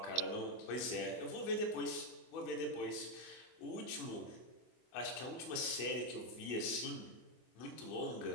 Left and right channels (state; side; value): late; right; 24 ms